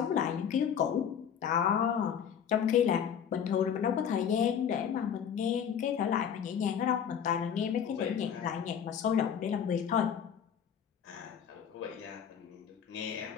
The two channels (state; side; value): quieter; right; 8.1 dB